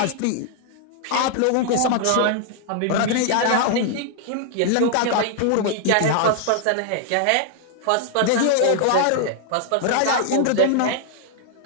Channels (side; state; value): both; different; correlation 0.00